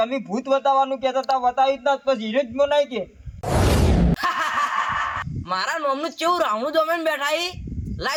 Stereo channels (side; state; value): both; identical; correlation 1.00